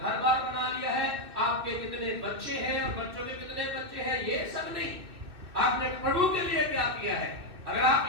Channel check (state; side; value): late; left; 2.5 ms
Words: बार बना लिया है, आपके कितने बच्चे हैं और बच्चों के कितने बच्चे हैं, ये सब नहीं। आपने प्रभु के लिए क्या किया है? अगर आप